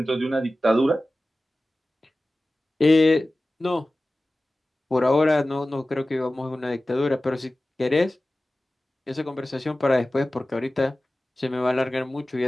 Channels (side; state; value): both; normal; correlation 0.96